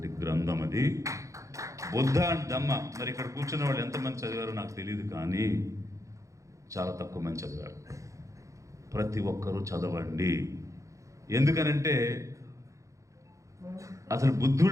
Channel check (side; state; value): left; late; 0.15 ms